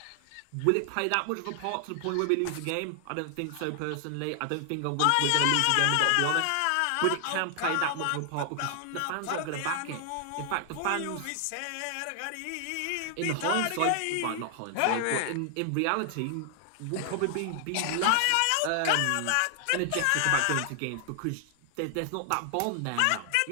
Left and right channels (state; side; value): different; both; correlation 0.00